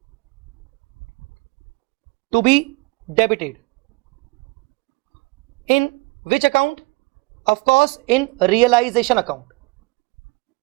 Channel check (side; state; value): left; quieter; 26.2 dB